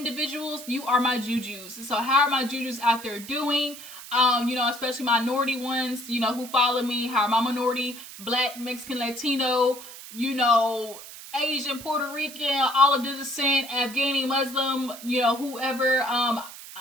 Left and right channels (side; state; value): right; noise; hiss, 14 dB below the sound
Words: you are my jujus. So how are my jujus out there doing? You know, especially minority ones, you know, who follow me. How are my minority, Black, Mexican, Latino, you know, Asian, Puerto Rican, all of the descent, Afghani, Muslim, you know, whoever,